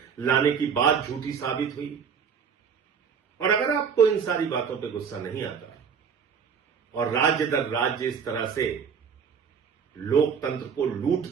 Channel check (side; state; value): left; quieter; 6.6 dB